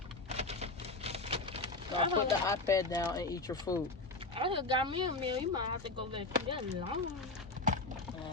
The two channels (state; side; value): quieter; right; 3.2 dB